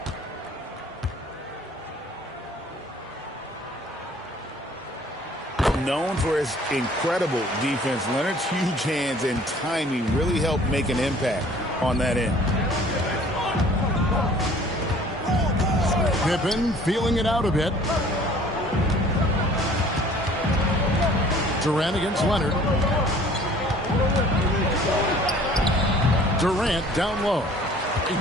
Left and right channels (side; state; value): both; normal; correlation 0.52